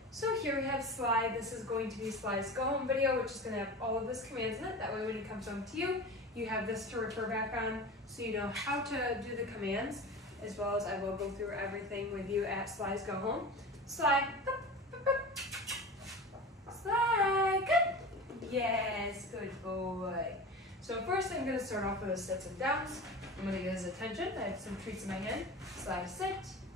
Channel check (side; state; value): both; normal; correlation 0.32